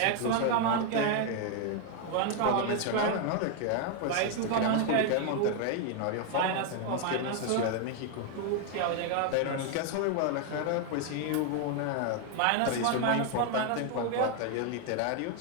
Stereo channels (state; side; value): different; both; correlation 0.01